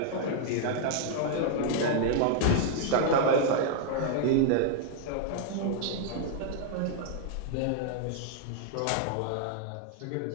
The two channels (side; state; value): both; different; correlation -0.01